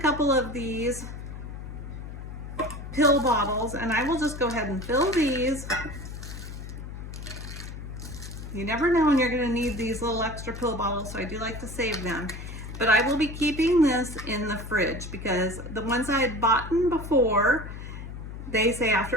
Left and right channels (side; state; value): left; noise; hum, 10 dB below the sound